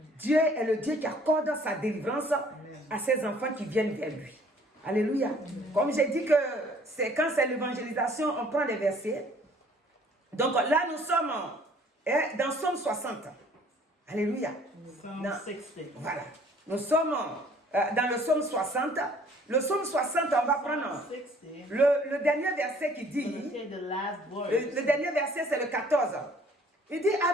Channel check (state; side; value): normal; both; correlation 0.56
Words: Dieu est le Dieu qui accorde sa délivrance à ses enfants qui viennent vers lui. Alléluia. Comme j'ai dit que c'est quand c'est l'évangélisation, on prend les versets. Donc là, nous sommes dans Somme 60. Alléluia. Psalm Dans- 60. Voilà. Nous sommes dans le Somme 60. Le Somme 60, on va prendre 60. le dernier verset qui Let's dit, say the last word. le dernier verset c'est le 14. Il dit,